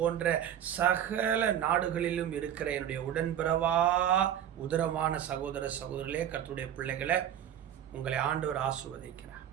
சகல நாடுகளிலும் இருக்கிற என்னுடைய உடன்பிறவா உதரமான சகோதர சகோதரர்களே, கர்த்தருடைய பிள்ளைகளை, உங்களை ஆண்டவர் ஆசீர்வதிக்கிறார்.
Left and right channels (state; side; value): quieter; left; 10.3 dB